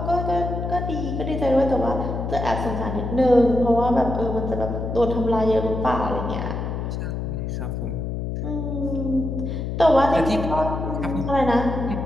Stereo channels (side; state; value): left; noise; hum, 3 dB below the sound